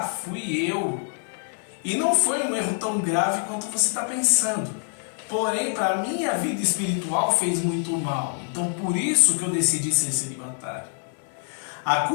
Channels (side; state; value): right; silent; 62 dB below the other